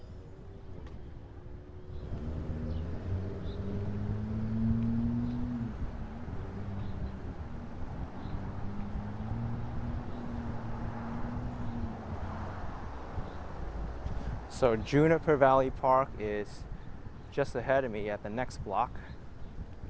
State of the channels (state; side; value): identical; both; correlation 1.00